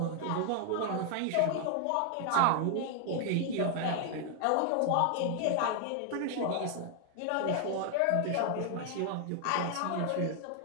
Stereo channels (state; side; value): different; both; correlation 0.00